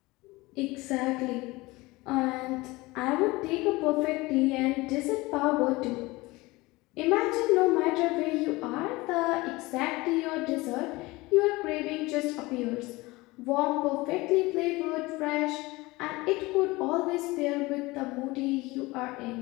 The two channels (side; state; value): right; quieter; 21.7 dB